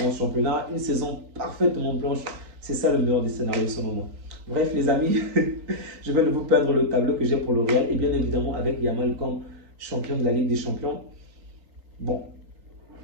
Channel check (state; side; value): late; left; 3.9 ms